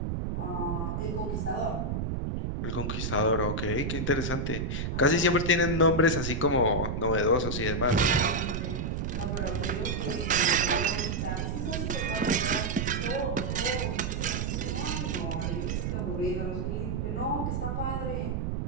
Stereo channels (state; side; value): noise; right; rumble, 1 dB below the sound